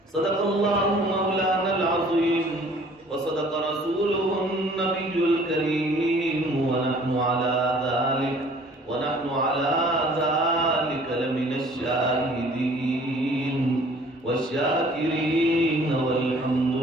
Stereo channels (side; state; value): both; normal; correlation 0.54